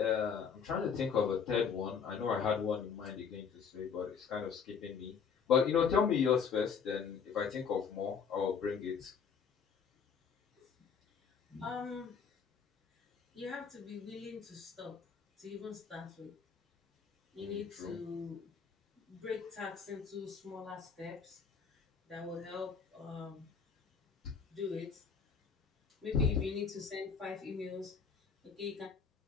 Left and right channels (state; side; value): quieter; right; 6.4 dB